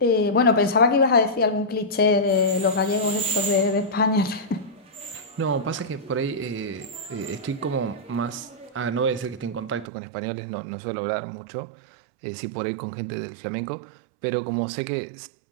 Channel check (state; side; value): drops out; left; at 9.9 s